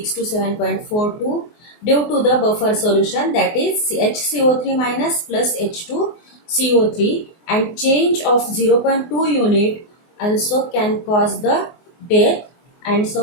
to 7.42 due to the buffer solution, that is HCO3 minus plus H2CO3, and change of 0.2 unit also can cause the death. And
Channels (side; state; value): right; late; 24 ms